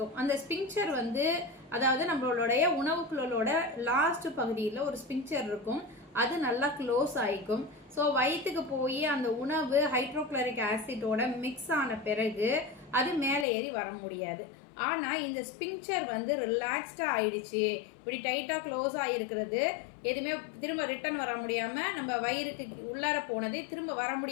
அந்த ஸ்பிங்க்சர் அதாவது நம்மளுடைய உணவு குழலோட லாஸ்ட் பகுதியில் ஒரு ஸ்பிங்க்சர் இருக்கும். அது நல்லா க்ளோஸ் ஆயிக்கும். ஸோ வயிற்றுக்கு போய் அந்த உணவு ஹைட்ரோக்ளோரிக் ஆசிட்டோட மிக்ஸ் ஆன பிறகு அது மேலே ஏறி வர முடியாது. ஆனா இந்த ஸ்பிங்க்சர் ரிலாக்ஸ்டா ஆயிடுச்சு, இப்படி டைட்டா க்ளோஸ் ஆயிருக்கிறது, எதுவுமே திரும்ப ரிட்டர்ன் வர முடியாம நம்ம வயிறுக்கு உள்ளார போனதே திரும்ப வர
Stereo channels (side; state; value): right; drops out; at 13.5 s